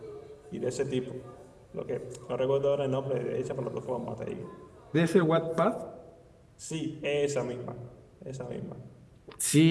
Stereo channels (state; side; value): identical; both; correlation 1.00